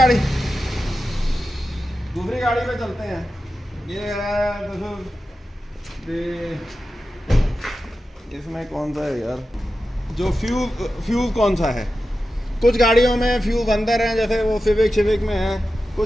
दूसरी गाड़ी पे चलते हैं। ये है, इसमें कौन सा है यार, जो फ्यूज कौन सा है। कुछ गाड़ियों में फ्यूज अंदर है, जैसे वो सिविक में है,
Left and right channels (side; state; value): both; normal; correlation 0.92